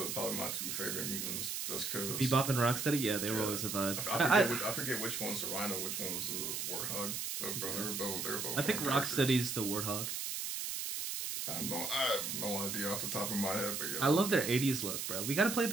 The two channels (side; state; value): right; noise; hiss, 3 dB below the sound